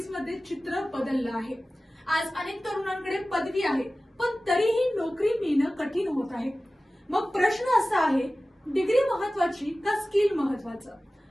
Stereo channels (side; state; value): both; normal; correlation 0.96